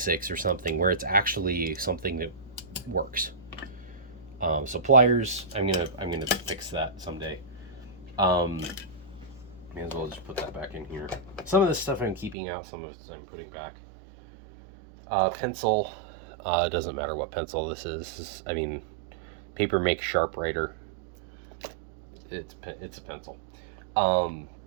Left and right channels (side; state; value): left; drops out; at 12.4 s